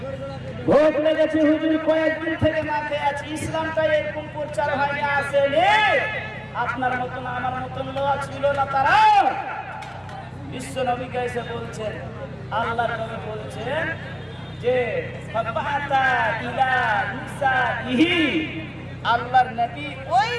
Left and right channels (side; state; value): both; identical; correlation 1.00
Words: ভোগ লেগেছে হুজুর, কয়েকদিন থেকে না খেয়ে আছি, ইসলামটা এরকম প্রচার হয়নি, আসেনি, আপনার মতন আমার মতন লোক ছিল না তারা। বিশ্ব নবীকে এসে বলছেন, আল্লাহর নবী বলছেন যে ফাবাতা ইলা নিসাইহি, আল্লাহর নবী ওই